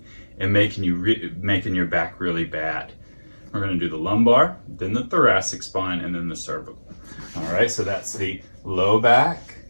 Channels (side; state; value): both; inverted; correlation -1.00